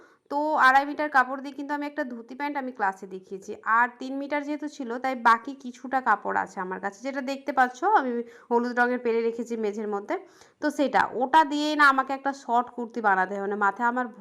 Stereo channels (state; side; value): identical; both; correlation 1.00